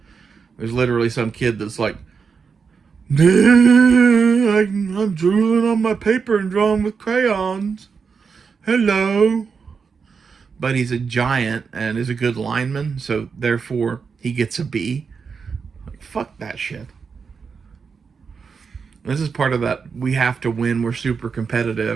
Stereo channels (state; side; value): quieter; left; 5.6 dB